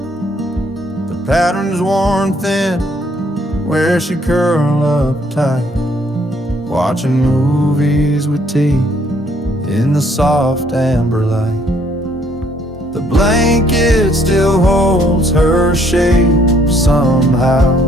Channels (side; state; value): both; normal; correlation 0.65